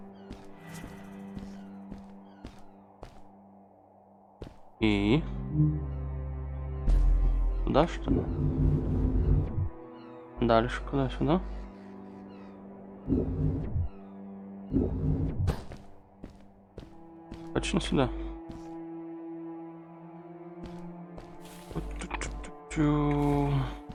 И куда, что ли? Дальше куда? Сюда? Точно сюда?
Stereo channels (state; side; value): identical; both; correlation 1.00